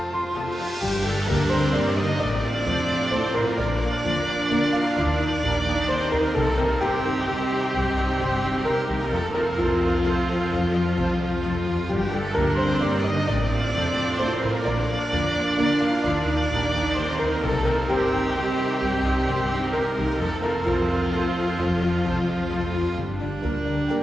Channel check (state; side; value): normal; both; correlation 0.91